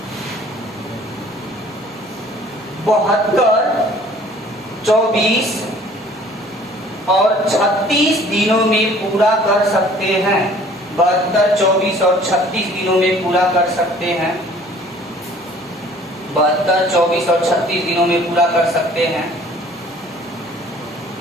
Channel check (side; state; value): both; normal; correlation 0.53